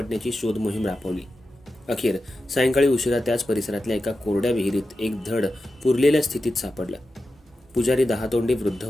शोध मोहीम राबवली. अखेर सायंकाळी उशिरा त्याच परिसरातल्या एका कोरड्या विहिरीत एक धड पुरलेल्या स्थितीत सापडलं. पुजारी दहातोंडे वृद्ध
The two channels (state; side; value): normal; both; correlation 0.92